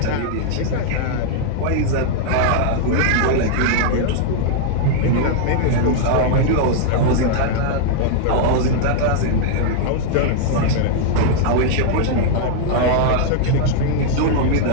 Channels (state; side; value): different; both; correlation -0.01